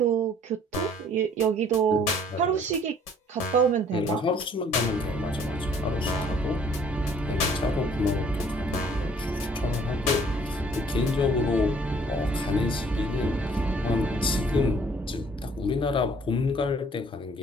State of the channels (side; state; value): both; normal; correlation 0.58